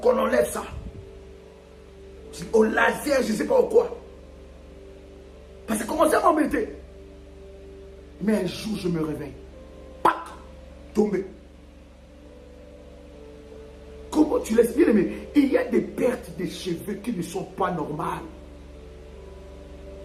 enlève ça. Au laser, je ne sais pas au quoi. Parce que ça commençait à m'embêter. Mais un jour, je me réveille. Pac! Tombé. Comment tu laisses bien aimer? Il y a des pertes de cheveux qui ne sont pas normales.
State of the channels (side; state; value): both; identical; correlation 1.00